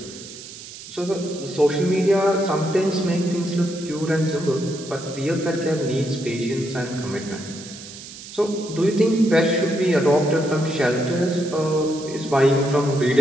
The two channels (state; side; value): noise; right; hiss, 14 dB below the sound